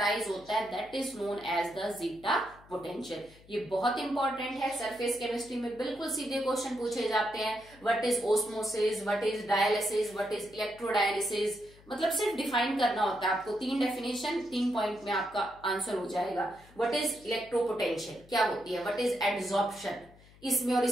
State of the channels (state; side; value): noise; left; hum, 25 dB below the sound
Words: होता है that is known as the zeta potential. ये बहुत इंपॉर्टेंट है, सरफेस केमिस्ट्री में बिल्कुल सीधे क्वेश्चन पूछे जाते हैं। What is osmosis, what is dialysis, what is electrodialysis, मतलब सिर्फ डिफाइन करना होता है आपको, 3 डेफिनेशन 3 पॉइंट में आपका आंसर हो जाएगा। व्हाट इज इलेक्ट्रोपोटेंशियल क्या होती है, व्हाट इज एड्सॉर्प्शन, इसमें और